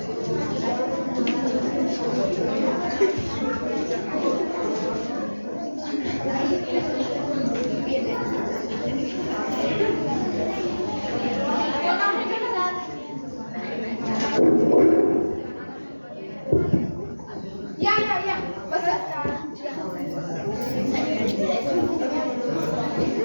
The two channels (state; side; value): inverted; both; correlation -1.00